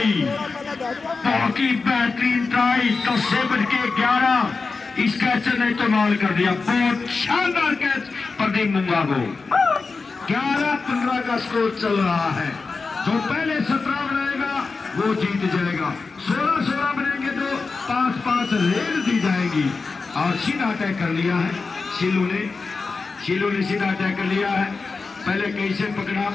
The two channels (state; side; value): quieter; right; 4.3 dB